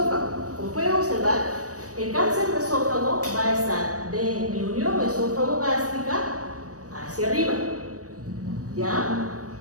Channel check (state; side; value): late; left; 0.66 ms